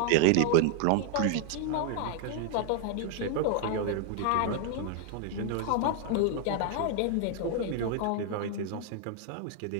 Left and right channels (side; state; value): both; different; correlation 0.00